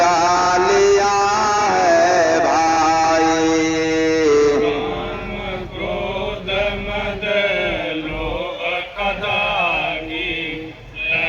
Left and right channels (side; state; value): both; identical; correlation 1.00